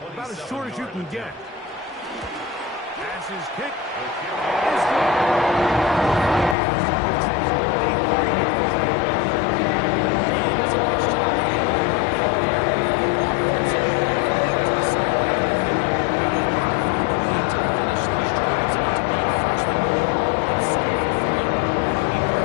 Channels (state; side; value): drops out; right; at 6.6 s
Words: as short as you can get. Pass is kicked.